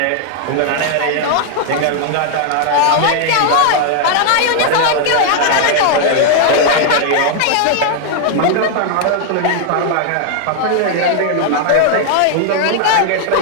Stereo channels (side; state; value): both; different; correlation 0.00